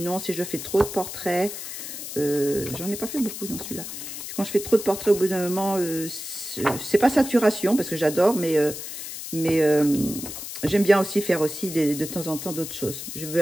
si je fais trop de portraits, j'en ai pas fait beaucoup dans celui-là. Quand je fais trop de portraits, au bout d'un moment, c'est pas saturation, parce que j'adore, mais j'aime bien aussi faire aussi de temps en temps d'autres choses. Je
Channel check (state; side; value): noise; left; hiss, 9 dB below the sound